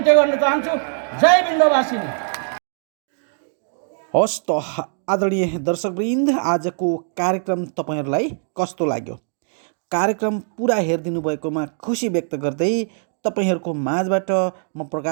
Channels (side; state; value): left; silent; 64 dB below the other